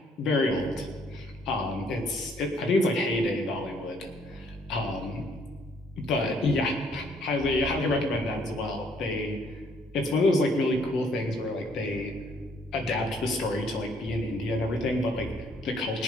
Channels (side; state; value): both; normal; correlation 0.65